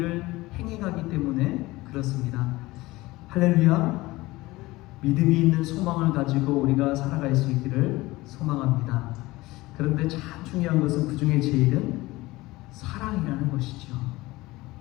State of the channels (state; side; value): quieter; right; 19.8 dB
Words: 행해가기 때문에 그렇습니다. 할렐루야. 믿음이 있는 소망을 가지고 우리가 살아갈 수 있기를 소망합니다. 그런데 참 중요한 것은 그 중에 제일은 사랑이라는 것이죠.